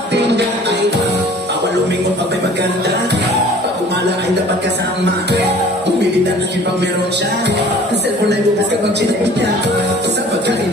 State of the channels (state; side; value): normal; both; correlation 0.49